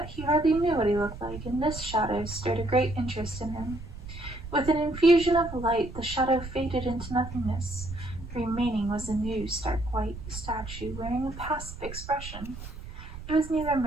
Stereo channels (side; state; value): right; noise; rumble, 12 dB below the sound